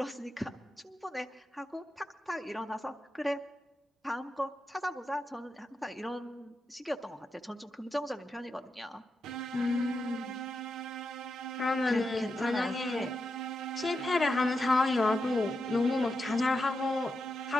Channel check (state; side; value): normal; both; correlation 0.87